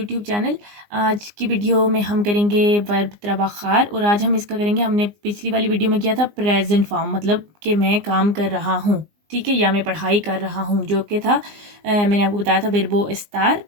channel. आज की वीडियो में हम करेंगे वर्ब त्राबाखार और आज हम इसका करेंगे। हमने पिछली वाली वीडियो में किया था प्रेजेंट फॉर्म, मतलब कि मैं काम कर रहा हूँ, ठीक है, या मैं पढ़ाई कर रहा हूँ, जो कि था मैंने आपको बताया था वर्बो एस्तार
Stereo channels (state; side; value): late; left; 19 ms